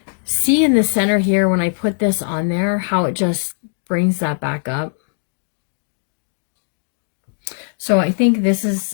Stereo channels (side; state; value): right; silent; 66 dB below the other